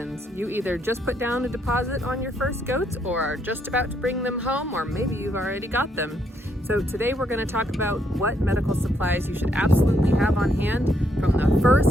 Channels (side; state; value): both; normal; correlation 0.74